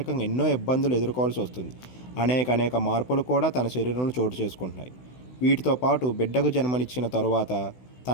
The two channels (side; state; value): right; late; 16 ms